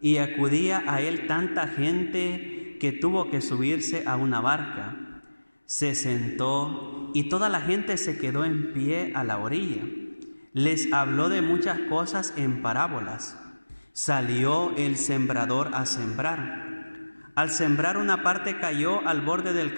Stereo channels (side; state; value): both; inverted; correlation -1.00